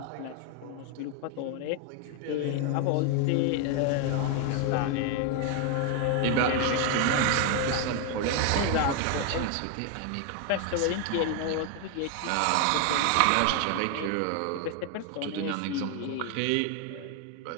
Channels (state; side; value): different; both; correlation 0.01